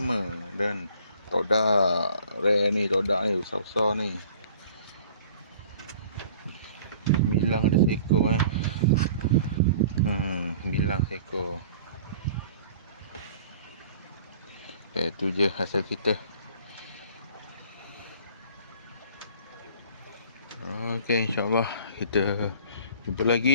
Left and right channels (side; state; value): both; inverted; correlation -0.49